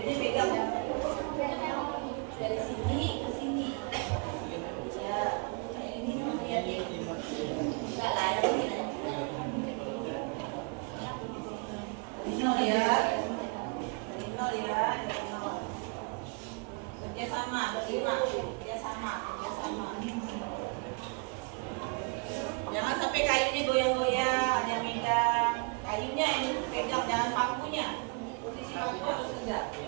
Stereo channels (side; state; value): left; quieter; 32.5 dB